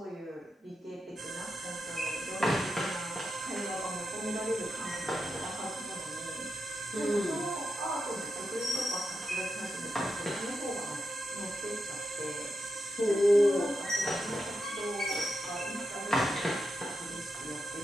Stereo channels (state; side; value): normal; both; correlation 0.86